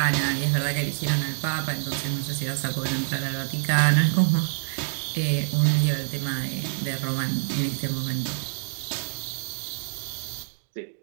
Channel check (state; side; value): silent; left; digital silence